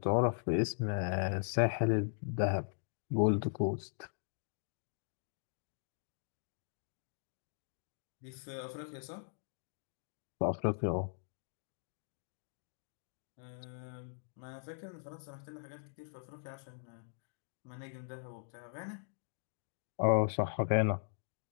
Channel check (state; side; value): silent; right; digital silence